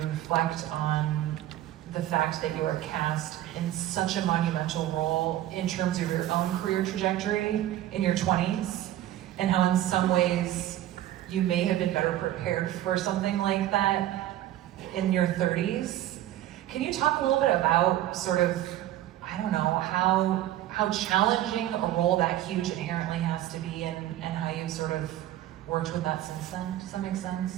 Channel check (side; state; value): left; quieter; 13.5 dB